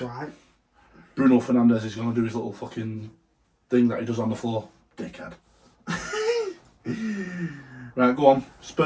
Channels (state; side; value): identical; both; correlation 1.00